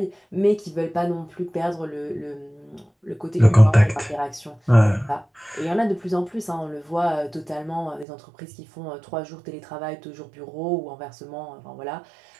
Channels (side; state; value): left; drops out; at 8.1 s